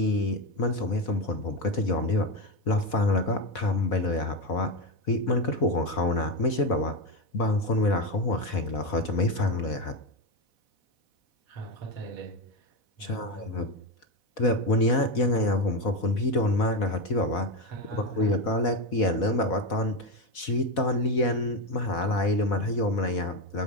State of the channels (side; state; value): right; late; 4.1 ms